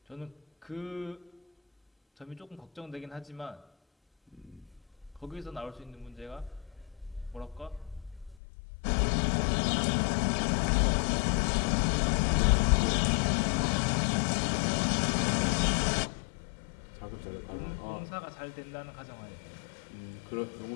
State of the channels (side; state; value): right; drops out; at 8.3 s